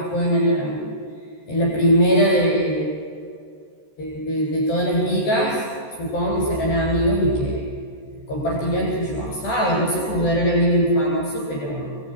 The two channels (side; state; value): right; late; 14 ms